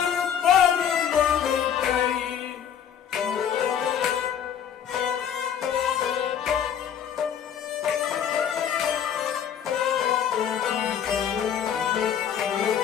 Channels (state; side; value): quieter; right; 8.8 dB